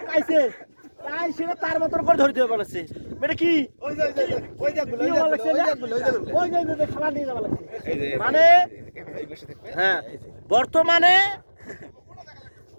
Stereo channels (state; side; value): inverted; both; correlation -1.00